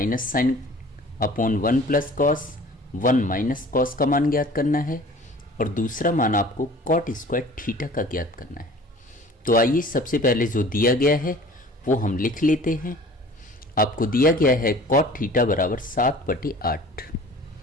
sine upon 1 plus cos 1 minus cos का मान ज्ञात करना है और दूसरा मान आपको कॉट स्क्वायर थीटा का ज्ञात करना है। तो आइए सबसे पहले जो दिया गया है वो हम लिख लेते हैं। आपको दिया गया है कॉट थीटा बराबर 7/8।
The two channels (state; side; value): normal; both; correlation 0.46